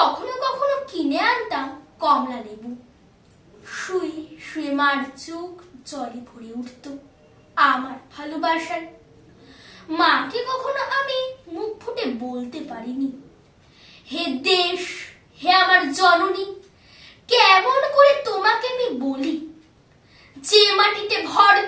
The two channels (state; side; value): identical; both; correlation 1.00